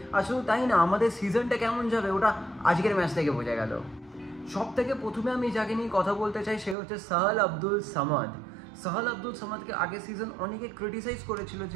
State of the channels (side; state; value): left; drops out; at 6.8 s